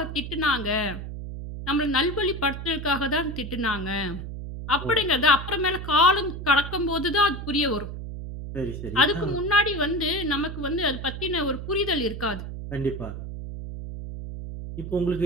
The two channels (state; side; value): noise; right; hum, 8 dB below the sound